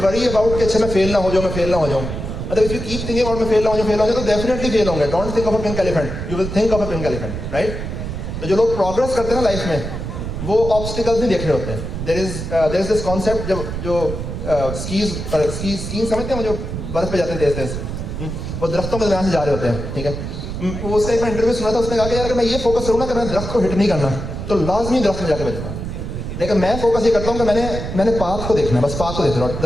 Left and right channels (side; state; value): right; noise; rumble, 6 dB below the sound